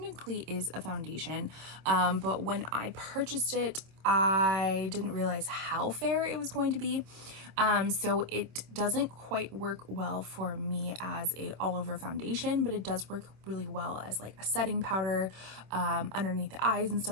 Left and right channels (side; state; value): left; late; 26 ms